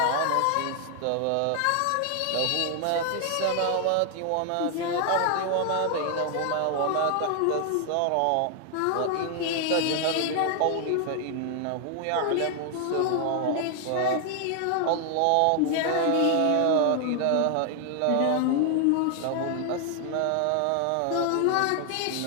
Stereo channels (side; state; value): both; different; correlation 0.00